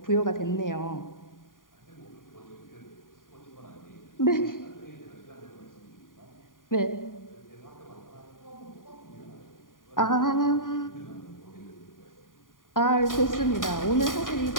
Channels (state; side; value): late; right; 0.90 ms